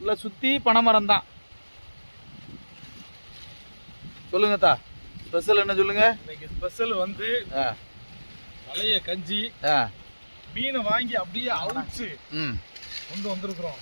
சுற்றி பனைமரம் தான். சொல்லுங்க தா, ஸ்பெஷல் என்ன சொல்லுங்க? இன்னைக்கு ஸ்பெஷல் வந்து பழைய கஞ்சி, மீனை வாங்கி அப்படியே அவிச்சு கொண்டு வந்திருக்கிறோம்.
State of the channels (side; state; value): both; inverted; correlation -1.00